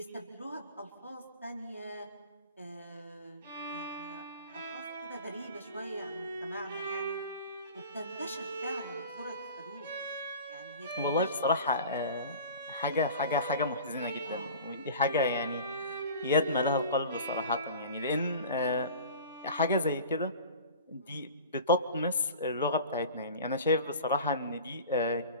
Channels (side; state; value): both; inverted; correlation -0.40